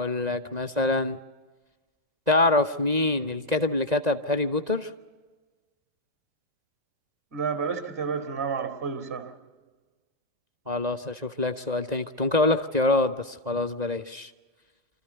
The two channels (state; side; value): late; left; 1.9 ms